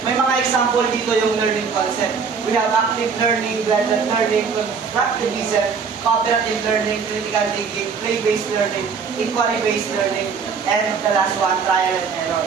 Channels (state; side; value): quieter; left; 5.8 dB